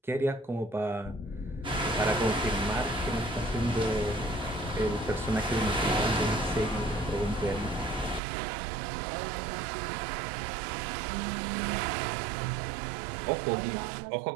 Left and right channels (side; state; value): left; drops out; at 8.2 s